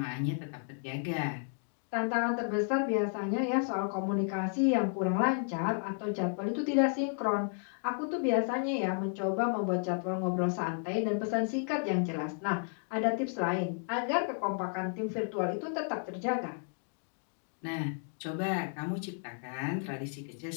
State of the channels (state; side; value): silent; right; 56 dB below the other